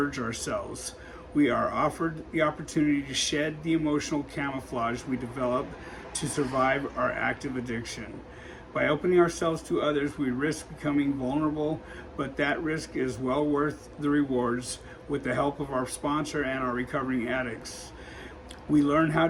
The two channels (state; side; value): identical; both; correlation 1.00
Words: ourselves. We are offered the opportunity to shed the emotional camouflage we develop to survive our active addiction. By opening ourselves to others, we risk becoming vulnerable, but that risk is well worth the rewards with the help of our sponsor and our recovering addicts. We learn how